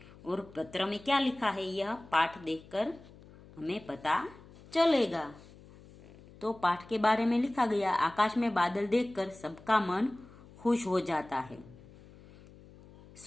और पत्र में क्या लिखा है यह पाठ देखकर हमें पता चलेगा। तो पाठ के बारे में लिखा गया, आकाश में बादल देखकर सबका मन खुश हो जाता है।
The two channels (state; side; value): noise; left; hum, 21 dB below the sound